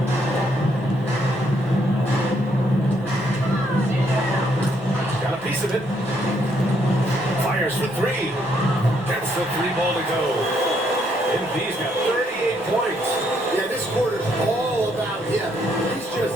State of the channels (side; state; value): both; normal; correlation 0.72